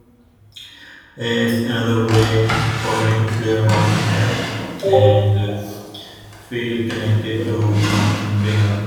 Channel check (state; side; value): identical; both; correlation 1.00